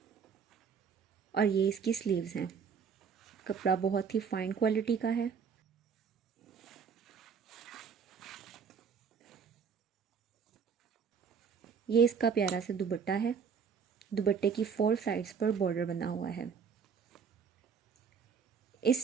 और ये इसकी स्लीव्स हैं। कपड़ा बहुत ही फाइन क्वालिटी का है। ये इसका प्यारा सा दुपट्टा है। दुपट्टे की 4 साइड्स पर बॉर्डर बना हुआ है।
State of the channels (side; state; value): left; quieter; 6.5 dB